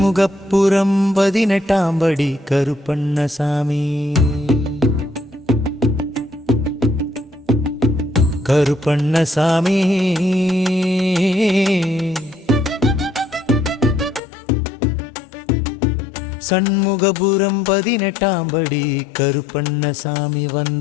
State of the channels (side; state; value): right; drops out; at 14.2 s